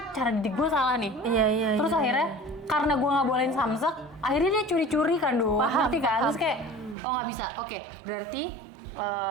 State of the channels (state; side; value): drops out; left; at 7.0 s